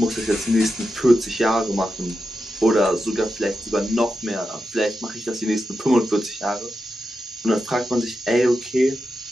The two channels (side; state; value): both; normal; correlation 0.89